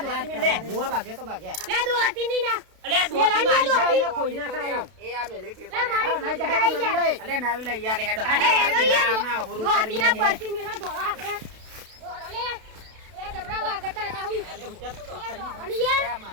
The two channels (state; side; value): late; left; 32 ms